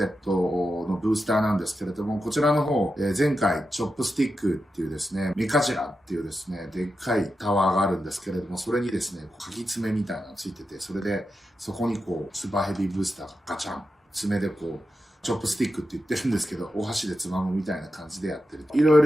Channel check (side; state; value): both; normal; correlation 0.89